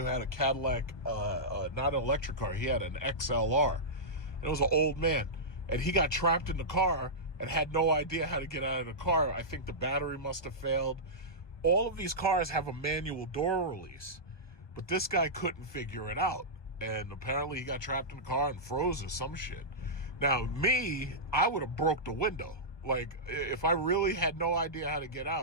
had a Cadillac, not an electric car, he had an XLR. And it was an old man. And he got trapped in the car and had no idea how to get out of the car. I think the battery must have failed. All of these cars have a manual door release. But this guy couldn't figure it out. And apparently he got trapped in the car and froze or some shit. Now, me, I would have broke the window. Like, if I really had no idea how to get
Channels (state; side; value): late; right; 1.2 ms